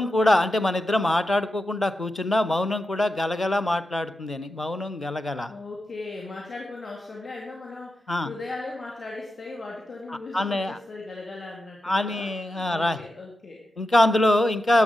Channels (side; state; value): both; normal; correlation 0.90